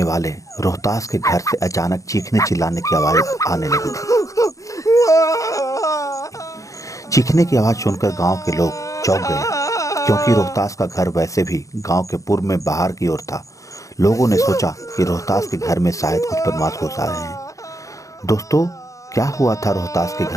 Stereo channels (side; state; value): right; late; 0.16 ms